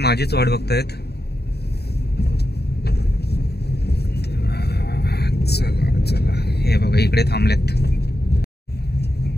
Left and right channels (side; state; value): right; late; 0.47 ms